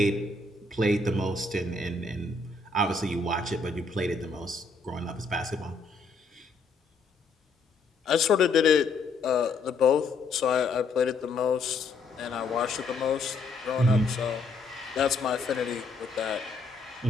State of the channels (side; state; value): right; quieter; 3.7 dB